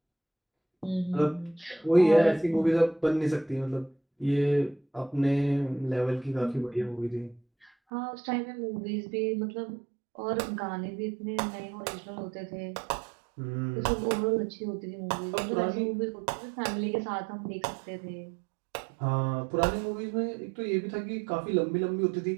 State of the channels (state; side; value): drops out; left; at 7.7 s